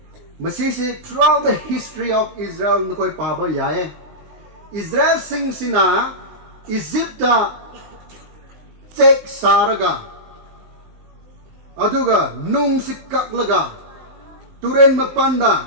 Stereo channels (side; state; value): left; late; 19 ms